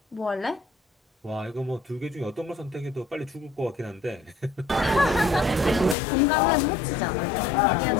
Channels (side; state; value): right; drops out; at 6.0 s